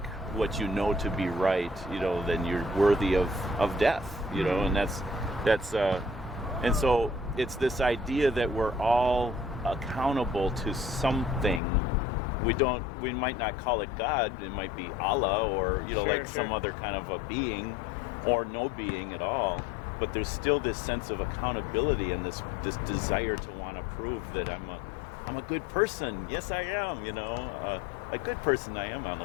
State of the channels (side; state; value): right; drops out; at 11.6 s